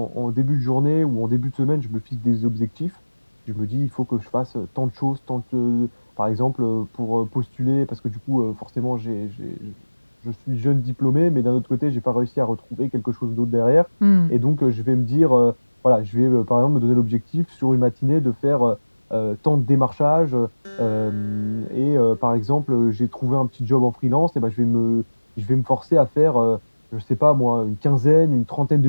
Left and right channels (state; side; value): inverted; both; correlation -1.00